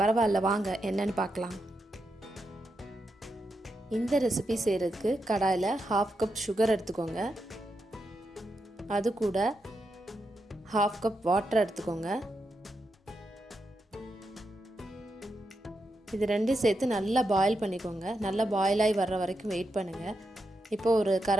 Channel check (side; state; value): both; normal; correlation 0.85